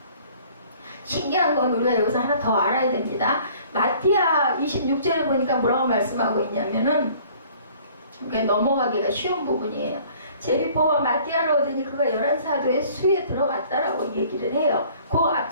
신기한 건 우리가 여기서 하나 더 알아야 됩니다. 마띠아 26절에 보니까 뭐라고 말씀하고 있냐면은 넘어가기가 쉬운 부분이에요. 제비보와 마띠아를 얻으니 그가 11사도의 수에 들어갔다라고 얘기를 해요. 그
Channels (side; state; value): both; inverted; correlation -0.53